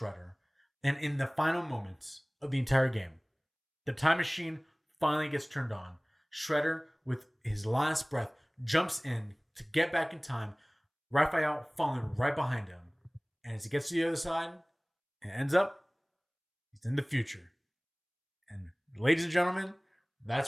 And in the final moments of the entire game, the time machine finally gets turned on. Shredder, with his last breath, jumps in to get back in time. Raphael falling right behind him. And as he gets to the other side, it ends up, he's in the future. And ladies and gentlemen, that's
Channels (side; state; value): both; identical; correlation 1.00